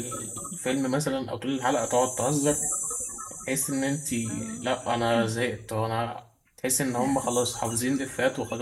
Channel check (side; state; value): both; identical; correlation 1.00